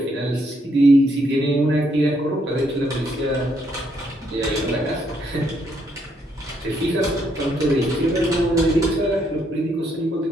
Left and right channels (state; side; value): normal; both; correlation 0.73